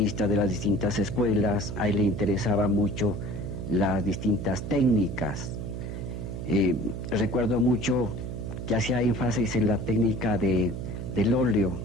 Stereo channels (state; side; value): noise; right; hum, 6 dB below the sound